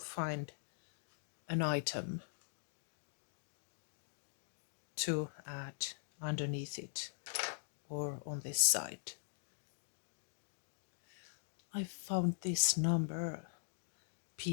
an item to add underneath it or on this side. I found this number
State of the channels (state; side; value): silent; right; digital silence